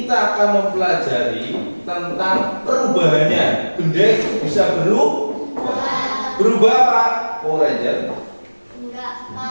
akan mempelajari tentang perubahannya. Benda itu bisa berubah. Berubah apa? Power Ranger?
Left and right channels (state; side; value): inverted; both; correlation -1.00